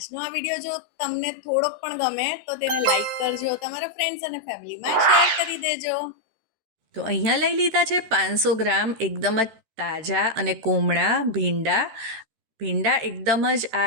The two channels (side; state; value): left; late; 13 ms